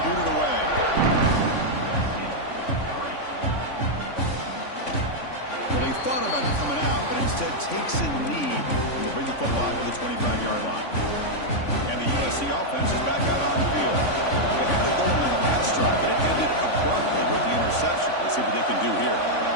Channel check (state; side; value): late; right; 3.5 ms